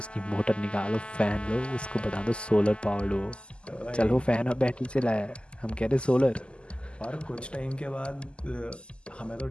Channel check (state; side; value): late; right; 0.051 ms